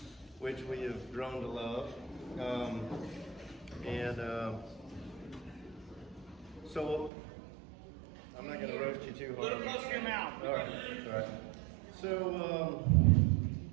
which we have grown to love. So I'm not going to roast you too hard. Little close to your mouth. All right. So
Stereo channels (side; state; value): left; drops out; at 7.1 s